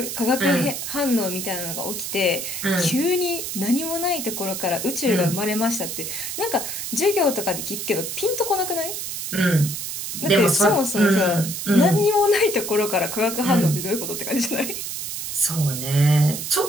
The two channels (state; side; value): noise; right; hiss, 5 dB below the sound